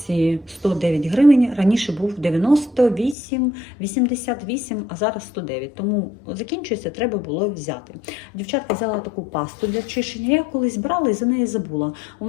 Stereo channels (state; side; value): drops out; right; at 3.2 s